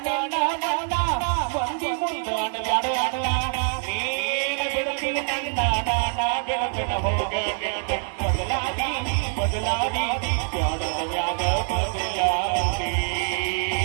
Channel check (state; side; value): silent; left; 55 dB below the other